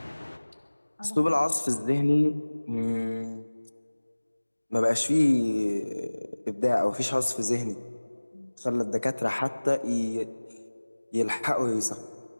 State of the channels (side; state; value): both; inverted; correlation -1.00